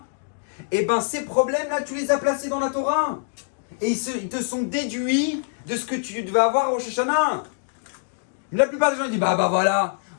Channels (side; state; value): right; silent; digital silence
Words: eh ben ces problèmes-là, tu les as placés dans la Torah. Et ils te sont déduits de ce que tu devais avoir au Rosh Hashanah. La plupart des gens disent, bah voilà.